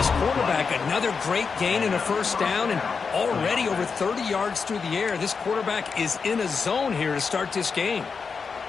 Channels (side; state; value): right; quieter; 5.3 dB